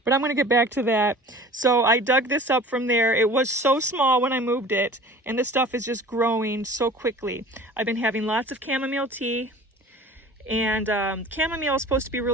but I'm going to get back to that. So I dug this up from there. It was so small when I moved it, and this stuff is just growing so quickly. I've been having lots of chamomile tea, and chamomile is supposed to be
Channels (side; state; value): both; normal; correlation 0.43